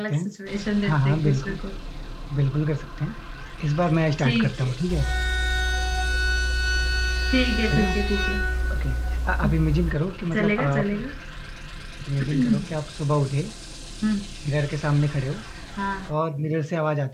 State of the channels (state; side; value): identical; both; correlation 1.00